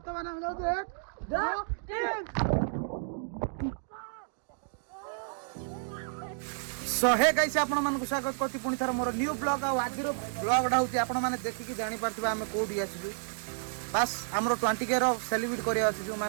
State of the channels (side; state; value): left; silent; digital silence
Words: हम जाऊ 1 2 3 सो हे गाइस आपण मानक स्वागत करछि पुनी थर मोर न्यू ब्लॉग आ आजिर ब्लॉगडा होछि आपण माने देखि जानि परथिबा हम कोडी आछिजु बस हमरो 20k रो सेलिब्रेट करिया आछिजु